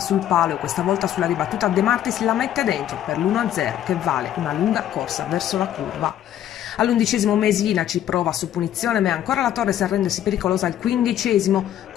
palo e questa volta sulla ribattuta De Martis la mette dentro per l'1-0 che vale una lunga corsa verso la curva. All'11° Mesina ci prova su punizione, ma è ancora la Torres a rendersi pericolosa al 15°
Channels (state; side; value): quieter; right; 11.4 dB